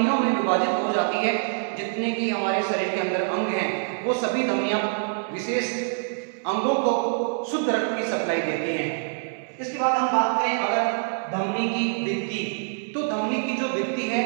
में विभाजित हो जाती है जितने की हमारे शरीर के अंदर अंग हैं। वो सभी धमनियां विशेष अंगों को शुद्ध रक्त की सप्लाई देती हैं। इसके बाद हम बात करें अगर धमनी की भित्ति, तो धमनी की जो भित्ति है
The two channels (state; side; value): silent; left; 62 dB below the other